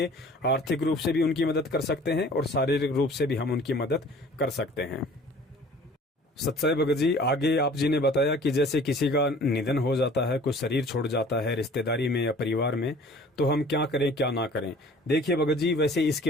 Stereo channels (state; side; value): normal; both; correlation 0.49